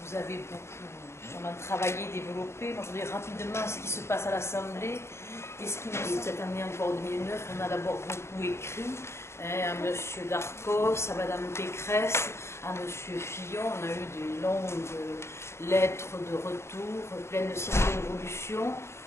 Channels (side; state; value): right; late; 0.13 ms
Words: vous avez beaucoup sûrement travaillé, développé. Moi, je voudrais rapidement ce qui se passe à l'Assemblée et ce qui me semble cette année encore 2009. On a d'abord beaucoup écrit à M. Darcos, à Mme Pécresse, à M. Fillon. On a eu des longues lettres de retour pleines de circonvolutions.